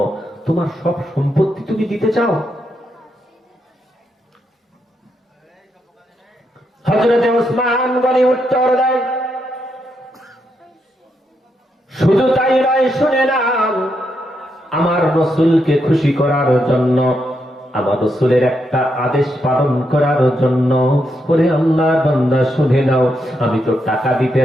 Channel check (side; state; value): both; normal; correlation 0.81